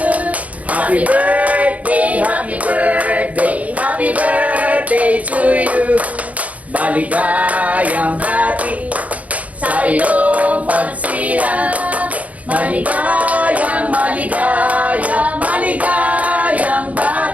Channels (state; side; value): late; left; 0.069 ms